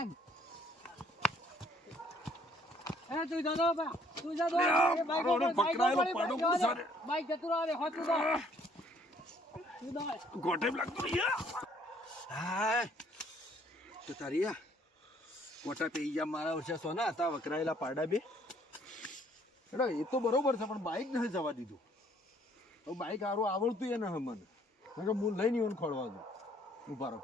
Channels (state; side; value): normal; both; correlation 0.62